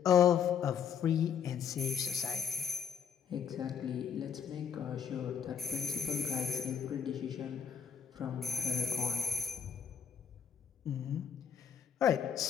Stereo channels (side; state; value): right; quieter; 7.4 dB